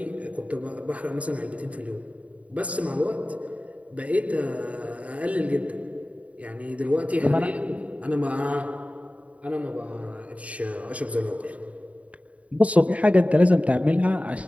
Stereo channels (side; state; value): left; late; 0.067 ms